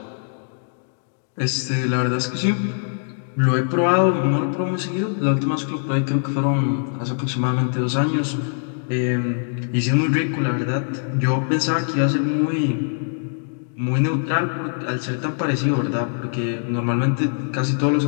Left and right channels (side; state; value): right; silent; digital silence